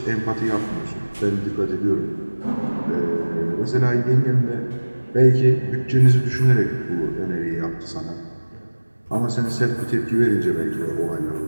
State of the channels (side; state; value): both; inverted; correlation -1.00